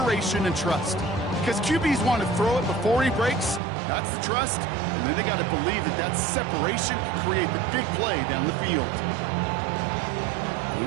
and trust. Because QBs want to throw it before he breaks, that's the trust, and then they got to believe that that separation can create the big play down the field.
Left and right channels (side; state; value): left; drops out; at 3.6 s